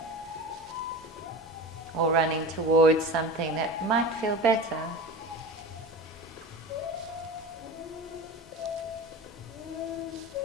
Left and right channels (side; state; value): both; normal; correlation 0.31